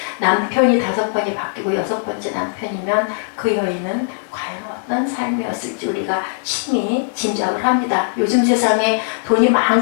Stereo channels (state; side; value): silent; right; digital silence